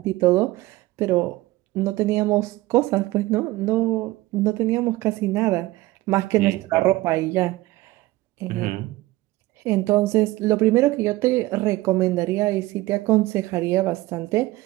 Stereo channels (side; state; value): left; quieter; 18.4 dB